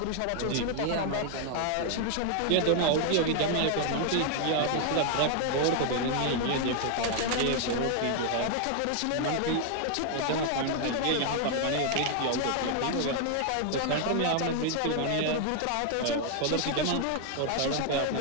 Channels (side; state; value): both; different; correlation 0.00